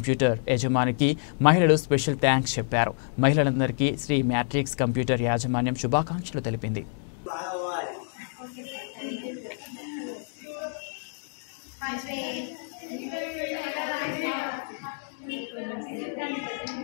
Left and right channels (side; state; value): right; silent; digital silence